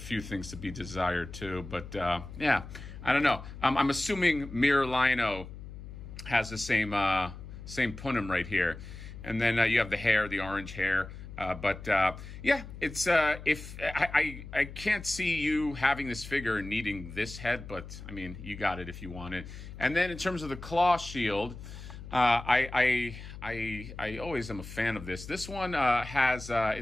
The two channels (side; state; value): left; noise; hum, 12 dB below the sound